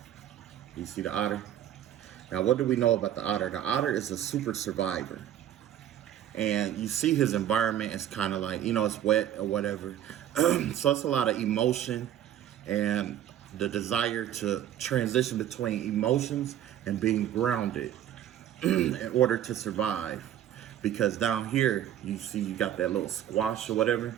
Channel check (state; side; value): quieter; left; 11.1 dB